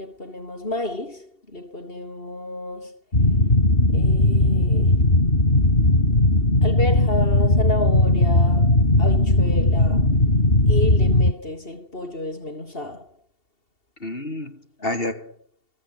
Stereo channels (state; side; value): late; right; 2.7 ms